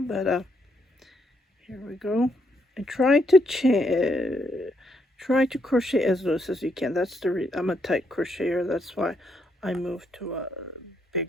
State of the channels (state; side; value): normal; both; correlation 0.76